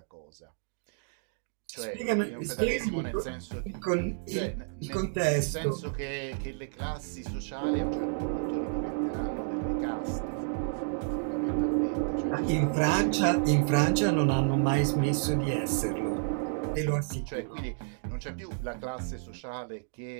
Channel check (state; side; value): silent; left; digital silence